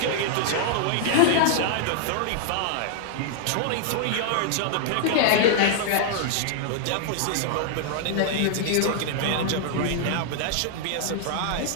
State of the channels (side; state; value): both; different; correlation -0.01